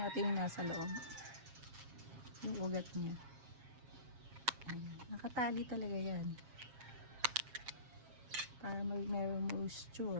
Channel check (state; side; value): late; left; 7.4 ms